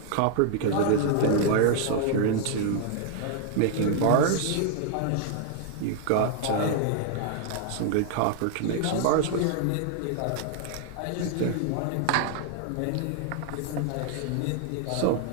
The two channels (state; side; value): different; both; correlation 0.00